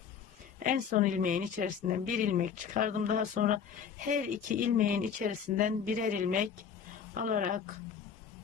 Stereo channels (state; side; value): quieter; right; 7.3 dB